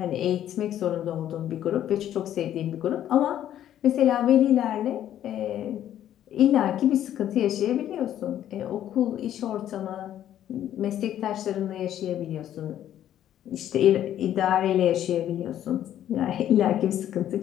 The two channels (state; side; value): quieter; right; 11.4 dB